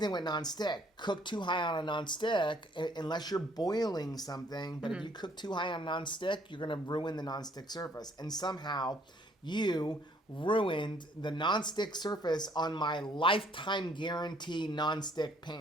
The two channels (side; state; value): both; normal; correlation 0.63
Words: with non-stick. Cook too high on a non-stick, unless you're boiling something. But if you cook too high on non-stick, you're going to ruin the non-stick surface. And somehow you ruined the non-stick surface on my lifetime guarantee non-stick